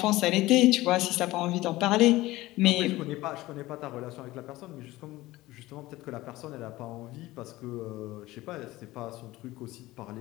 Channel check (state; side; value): quieter; right; 18.1 dB